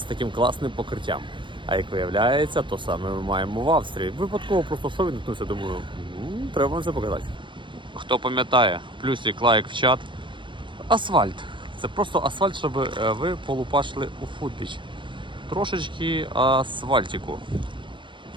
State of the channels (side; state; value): left; late; 0.23 ms